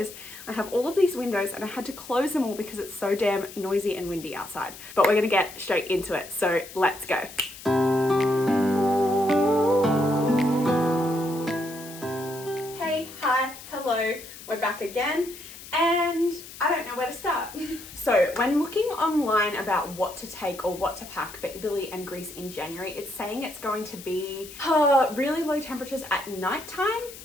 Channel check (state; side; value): noise; left; hiss, 15 dB below the sound